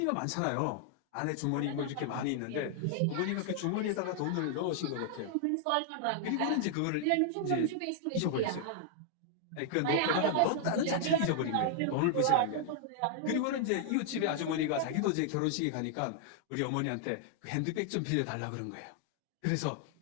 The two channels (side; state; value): both; different; correlation 0.00